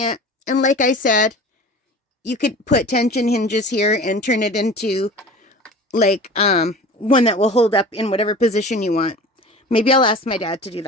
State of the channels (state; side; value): normal; both; correlation 0.39